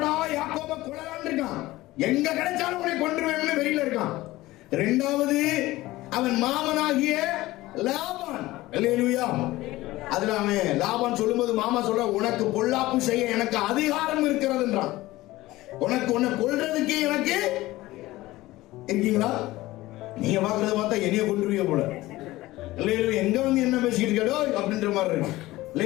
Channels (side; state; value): right; quieter; 18.0 dB